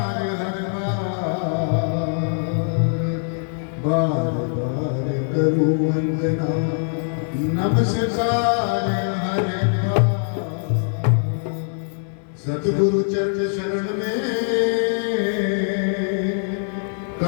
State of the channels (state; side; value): silent; right; digital silence